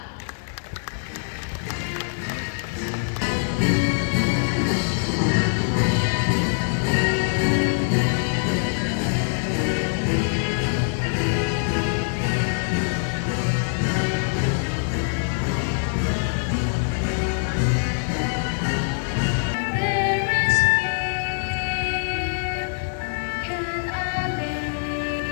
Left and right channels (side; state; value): right; silent; digital silence